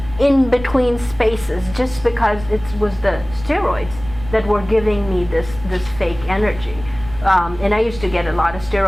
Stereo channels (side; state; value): right; noise; rumble, 14 dB below the sound